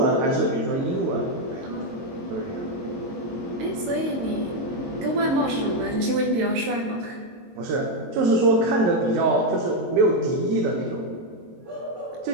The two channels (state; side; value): late; left; 22 ms